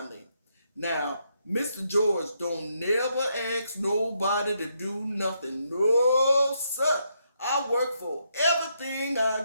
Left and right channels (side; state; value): both; inverted; correlation -0.78